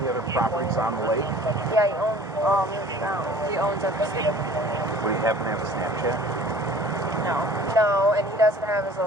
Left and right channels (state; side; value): normal; both; correlation 0.48